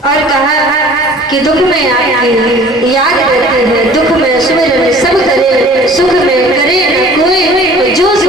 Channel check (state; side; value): normal; both; correlation 0.49